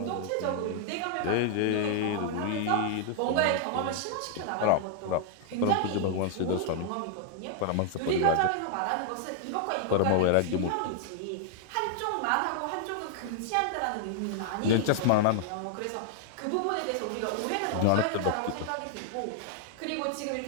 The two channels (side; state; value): both; different; correlation 0.00